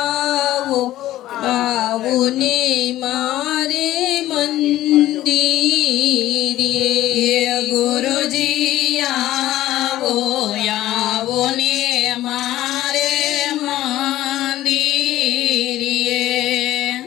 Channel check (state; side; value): quieter; right; 14.5 dB